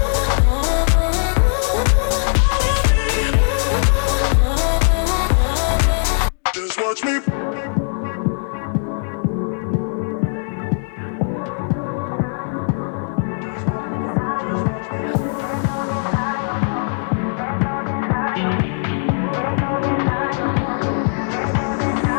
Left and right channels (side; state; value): right; silent; digital silence